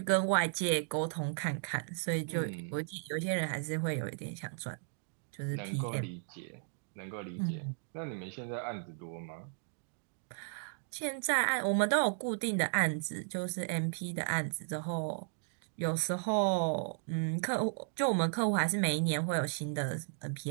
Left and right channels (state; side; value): silent; left; digital silence